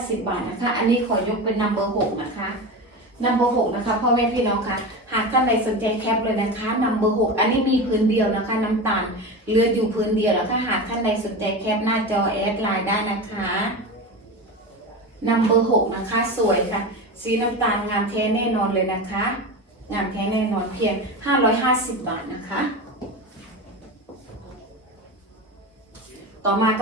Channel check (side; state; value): both; normal; correlation 0.24